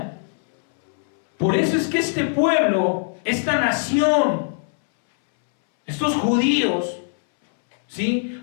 Por eso es que este pueblo, esta nación, estos judíos, ¿sí?,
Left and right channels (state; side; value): silent; right; 65 dB below the other